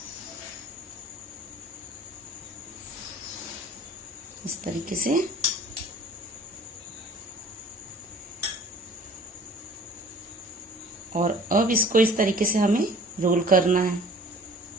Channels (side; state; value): both; normal; correlation 0.48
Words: इस तरीके से और अब इसको इस तरीके से हमें रोल करना है।